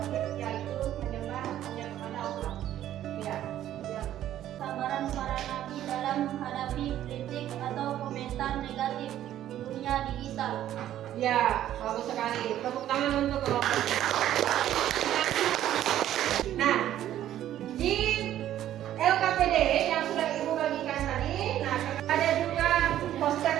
yaitu menyembah hanya kepada Allah. Ya. Sabaran para nabi dalam menghadapi kritik atau komentar negatif di dunia digital. Ya, bagus sekali. Tepuk tangan untuk kelompok. Nah, di LKPD yang sudah Ibu bagikan tadi, nah ada juga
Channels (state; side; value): quieter; left; 12.1 dB